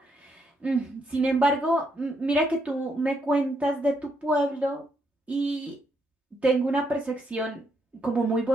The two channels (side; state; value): both; normal; correlation 0.76